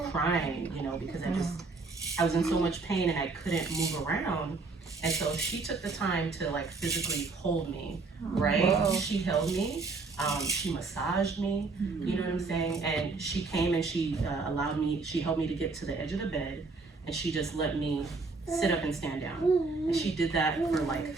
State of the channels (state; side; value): quieter; left; 4.0 dB